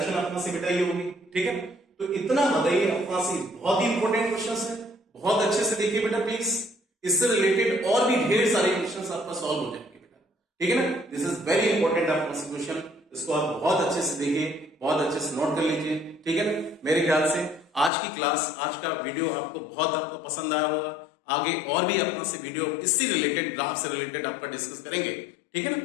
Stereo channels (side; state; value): right; drops out; at 17.9 s